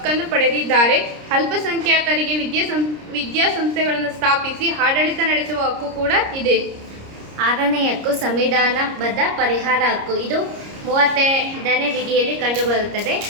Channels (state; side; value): late; left; 30 ms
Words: ಪಡೆದಿದ್ದಾರೆ. ಅಲ್ಪಸಂಖ್ಯಾತರಿಗೆ ವಿದ್ಯಾಸಂಸ್ಥೆಗಳನ್ನು ಸ್ಥಾಪಿಸಿ ಆಡಳಿತ ನಡೆಸುವ ಹಕ್ಕು ಕೂಡ ಇದೆ. 6ನೇ ಹಕ್ಕು ಸಂವಿಧಾನಬದ್ಧ ಪರಿಹಾರ ಹಕ್ಕು. ಇದು 35ನೇ ವಿಧಿಯಲ್ಲಿ ಕಂಡುಬರುತ್ತದೆ.